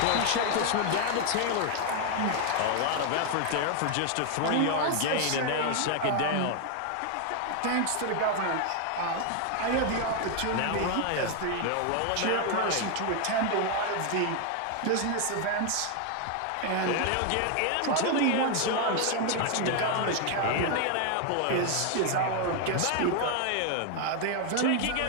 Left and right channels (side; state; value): both; different; correlation 0.01